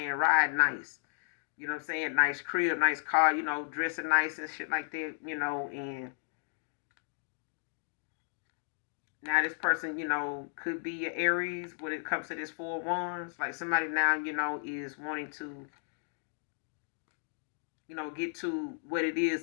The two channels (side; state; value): right; silent; digital silence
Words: Riding nice. You know what I'm saying? Nice crib, nice car, dressing nice and shit like that, and now this person, could be an Aries when it comes to this Four of Wands. Like somebody now, is wanting to get to what it is